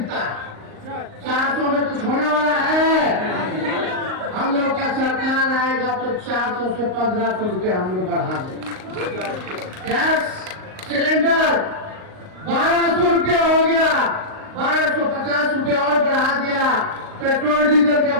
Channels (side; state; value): left; late; 38 ms